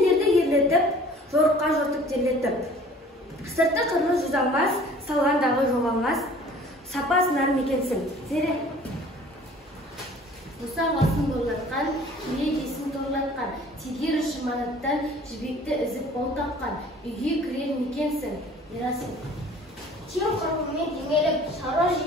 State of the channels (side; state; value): both; normal; correlation 0.49